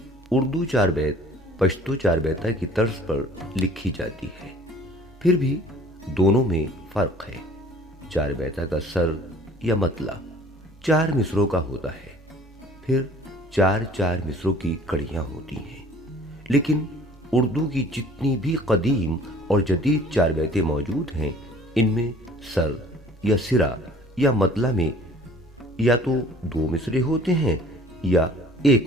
उर्दू 4 बैत पश्तो 4 बैता की तर्ज पर लिखी जाती है, फिर भी दोनों में फर्क है। 4 बैता का सर या मतला 4 मिसरों का होता है, फिर 4-4 मिसरों की कड़ियां होती हैं। लेकिन उर्दू की जितनी भी कदीम और जदीद चार बैतें मौजूद हैं, इनमें सर या सिरा या मतला में या तो 2 मिसरे होते हैं या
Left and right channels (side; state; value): both; normal; correlation 0.51